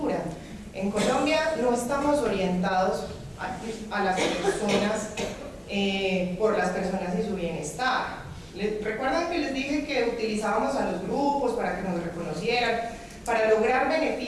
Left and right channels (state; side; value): identical; both; correlation 1.00